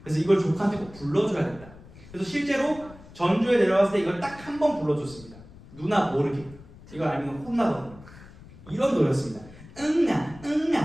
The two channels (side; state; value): left; noise; rumble, 20 dB below the sound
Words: 그래서 이걸 조카한테 꼭 불러줘야겠다. 그래서 실제로 전주에 내려갔을 때 이걸 딱 한 번 불러줬습니다. 누나 모르게. 이걸 알면 혼나거든요. 이런 노래였습니다. 응아